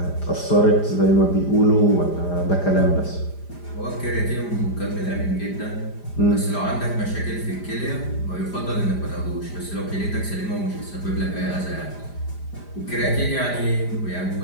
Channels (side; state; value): right; late; 5.0 ms